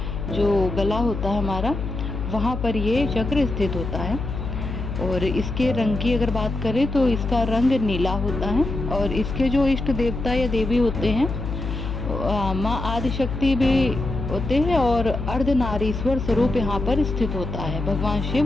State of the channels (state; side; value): noise; left; hum, 5 dB below the sound